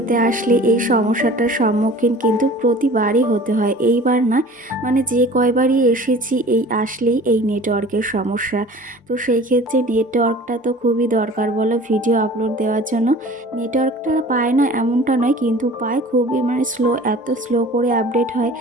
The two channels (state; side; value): normal; both; correlation 0.44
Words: আসলে এই সমস্যাটার সম্মুখীন কিন্তু প্রতিবারই হতে হয়। এইবার না, মানে যে কয়বারই এসেছি এই আসলেই এই নেটওয়ার্কের সমস্যা। তো সেই ক্ষেত্রে নেটওয়ার্কটা তো খুবই দরকার বলো ভিডিও আপলোড দেওয়ার জন্য। নেটওয়ার্কটা পায় না এমনটা নয়, কিন্তু পায় খুবই মানে স্লো, এত স্লো করে আপডেট হয়